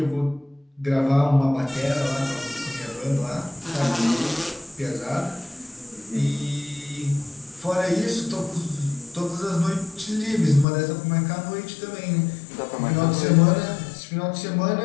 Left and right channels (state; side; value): drops out; right; at 10.7 s